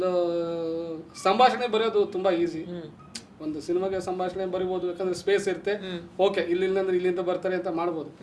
ಸಂಭಾಷಣೆ ಬರೆಯೋದು ತುಂಬ ಈಸಿ. ಒಂದು ಸಿನಿಮಾಗೆ ಸಂಭಾಷಣೆ ಬರಿಬೋದು, ಯಾಕಂದ್ರೆ ಸ್ಪೇಸ್ ಇರುತ್ತೆ, ಓಕೆ ಇಲ್ಲಿಂದ್ರೆ ಇಲ್ಲಿಂದ ಬರ್ತಾರೆ ಅಂತ ಮಾಡ್ಬೋದು.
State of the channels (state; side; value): identical; both; correlation 1.00